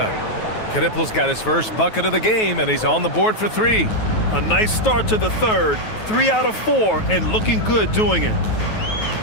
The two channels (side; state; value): right; late; 9.3 ms